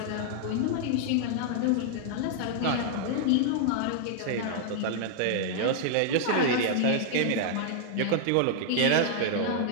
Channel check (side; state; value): both; different; correlation -0.01